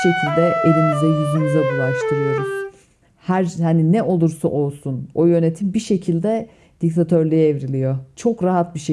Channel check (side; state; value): both; identical; correlation 1.00